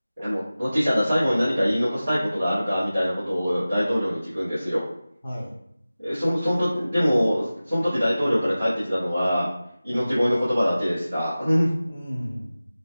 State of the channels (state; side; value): inverted; both; correlation -0.97